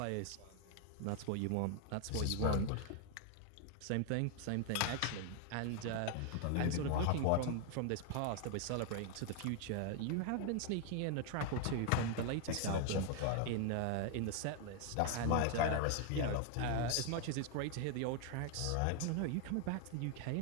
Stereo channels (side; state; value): both; different; correlation 0.00